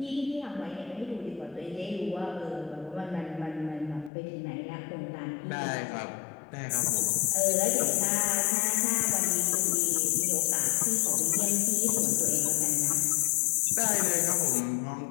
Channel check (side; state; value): right; drops out; at 4.1 s